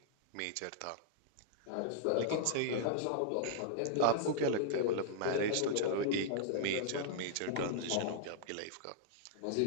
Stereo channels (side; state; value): both; different; correlation -0.01